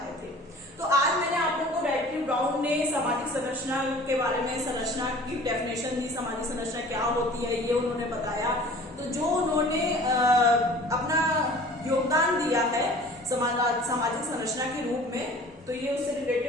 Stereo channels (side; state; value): both; normal; correlation 0.46